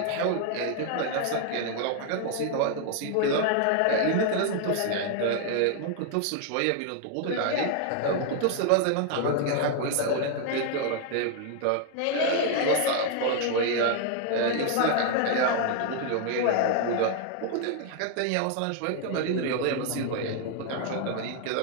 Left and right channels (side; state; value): both; different; correlation 0.00